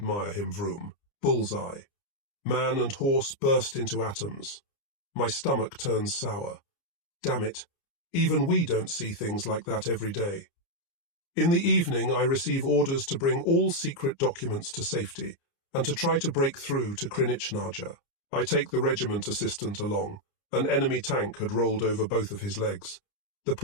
him, Vroom. Bullseye. Man and horse burst into atoms. My stomach turns sour. Damn it. Even we don't see things like that every day. In the evening, I receive orders to bring all secret documents to safety and to try to break through to Krynichnaya. I take the regiment assistant along. An enemy tank had rolled over both of his legs. The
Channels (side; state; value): right; late; 29 ms